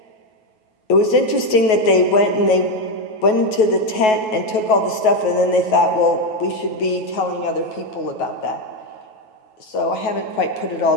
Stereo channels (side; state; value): right; late; 9.3 ms